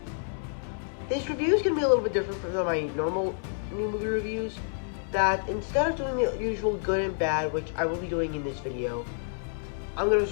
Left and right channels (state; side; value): silent; right; 59 dB below the other